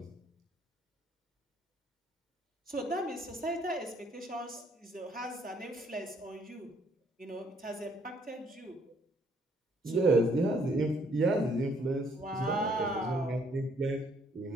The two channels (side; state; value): both; normal; correlation 0.66